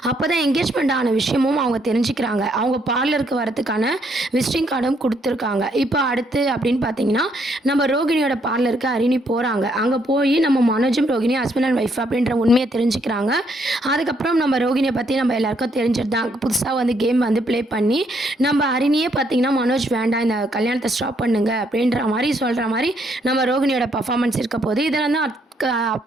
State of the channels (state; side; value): normal; both; correlation 0.72